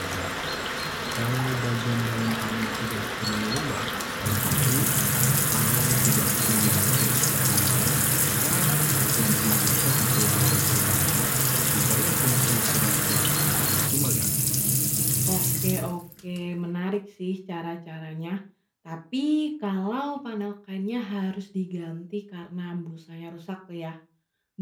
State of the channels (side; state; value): both; identical; correlation 1.00